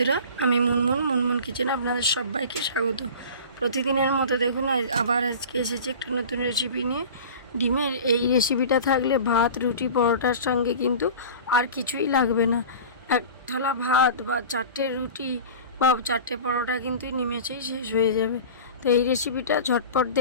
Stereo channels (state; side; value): inverted; both; correlation -0.37